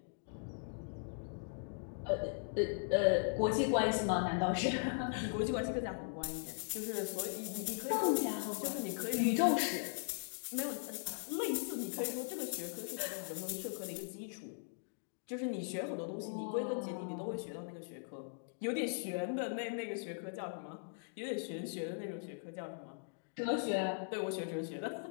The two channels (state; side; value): silent; right; digital silence